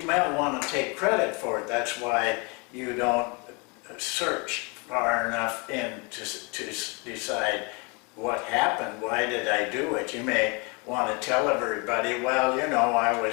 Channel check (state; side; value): quieter; right; 30.8 dB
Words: may want to take credit for it. That's why you don't search far enough in to decide what happened, why did I do it. You may want to tell everybody, well, you know, I